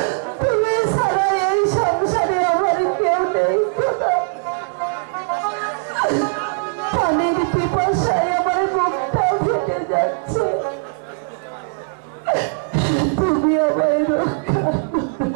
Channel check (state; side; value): silent; left; 63 dB below the other